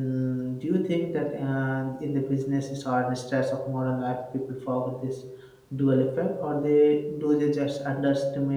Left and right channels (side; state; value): both; identical; correlation 1.00